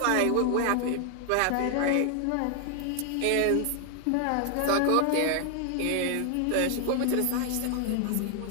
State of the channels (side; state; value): both; different; correlation 0.00